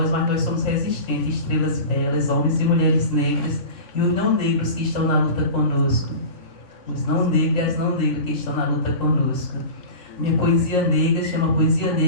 mas nós somos resistentes, estrelas belas, homens e mulheres negras, e os não negros que estão na luta conosco. Os não negros e as não negras que estão na luta conosco. Minha poesia negra chama Poesia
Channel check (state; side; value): late; right; 3.6 ms